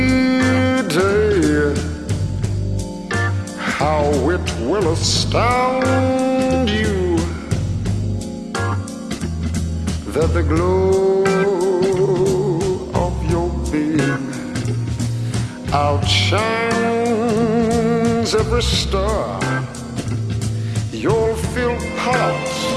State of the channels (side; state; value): both; identical; correlation 1.00